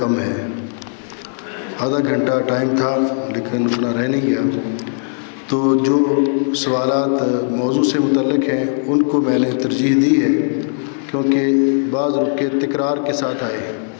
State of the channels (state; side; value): silent; right; digital silence